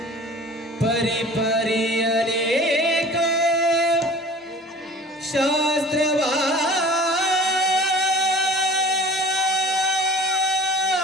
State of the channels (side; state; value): both; normal; correlation 0.44